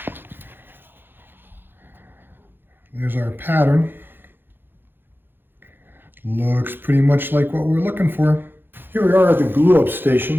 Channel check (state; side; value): late; left; 0.10 ms